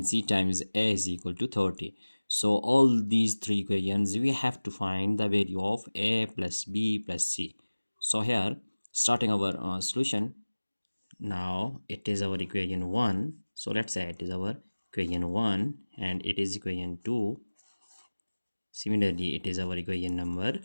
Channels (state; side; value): inverted; both; correlation -1.00